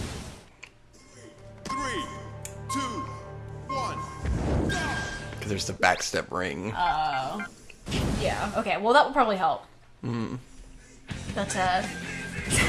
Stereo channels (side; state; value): both; identical; correlation 1.00